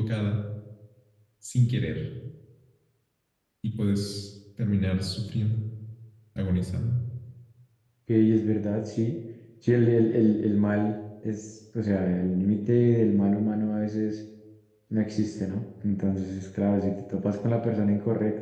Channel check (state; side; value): identical; both; correlation 1.00